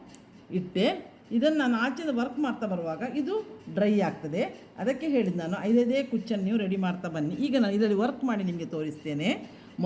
ಇಟ್ಟೆ, ಇದನ್ನು ನಾನು ಆಚೆಯಿಂದ ವರ್ಕ್ ಮಾಡ್ತಾ ಬರುವಾಗ ಇದು ಡ್ರೈ ಆಗ್ತದೆ. ಅದಕ್ಕೆ ಹೇಳಿದ್ದು ನಾನು 5 ಕುಚ್ಚನ್ನು ನೀವು ರೆಡಿ ಮಾಡ್ತಾ ಬನ್ನಿ. ಈಗ ನಾನು ಇದರಲ್ಲಿ ವರ್ಕ್ ಮಾಡಿ ನಿಮಗೆ ತೋರಿಸ್ತೇನೆ.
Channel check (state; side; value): identical; both; correlation 1.00